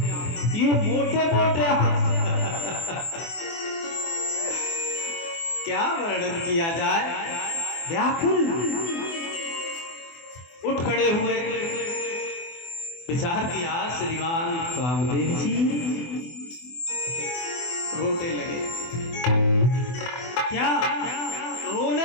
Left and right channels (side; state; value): right; late; 24 ms